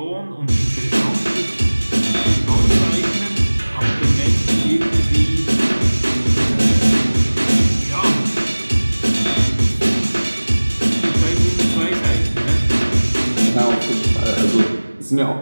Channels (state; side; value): inverted; both; correlation -1.00